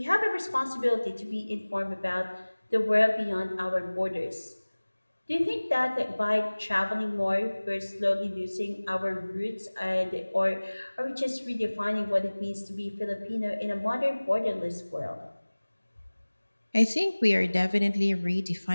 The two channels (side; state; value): both; inverted; correlation -1.00